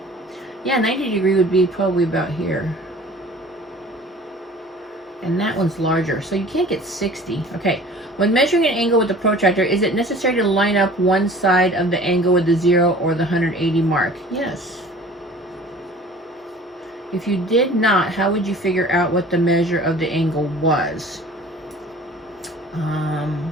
Yeah, 90 degree would be probably about here. And that one's larger, so you can't get 60. Okay, when measuring an angle with the protractor, is it necessary to line up one side of the angle with the 0 or the 180 mark? Yes. If you did not, how would you figure out what the measure of the angle was?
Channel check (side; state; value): both; normal; correlation 0.46